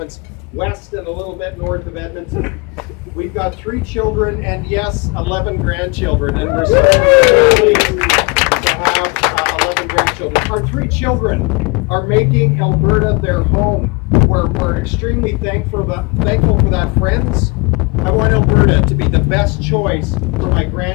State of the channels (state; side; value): quieter; right; 29.2 dB